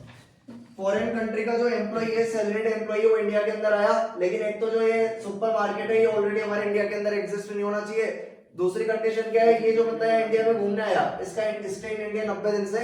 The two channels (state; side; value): identical; both; correlation 1.00